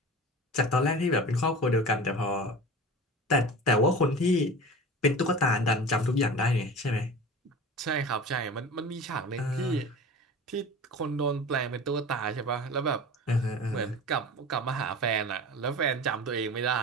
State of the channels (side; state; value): both; normal; correlation 0.35